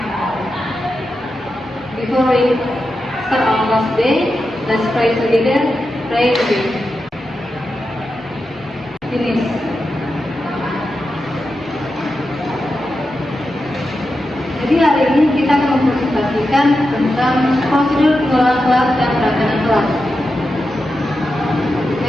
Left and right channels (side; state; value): both; normal; correlation 0.89